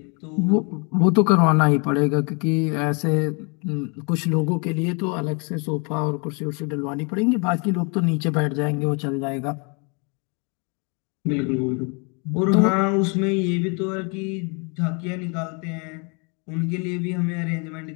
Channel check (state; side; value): quieter; right; 33.9 dB